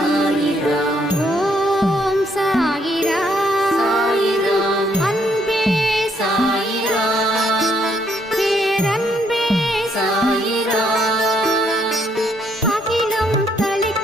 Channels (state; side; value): normal; both; correlation 0.71